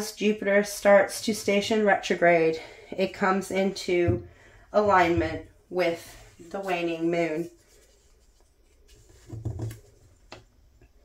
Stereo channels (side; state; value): both; identical; correlation 1.00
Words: Jupiter starts to station retrograde, it comes into alignment with the waning moon.